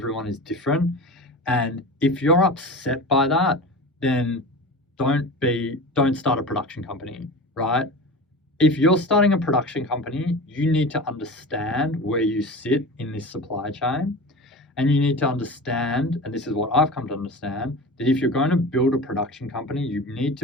is different. And if you're upset by that, then don't start a production company, right? If you're starting a production company, you need to understand where you sit in this supply chain. And you need to understand, and this is what I've come to understand, that if you're going to build a production company, you need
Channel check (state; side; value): normal; both; correlation 0.32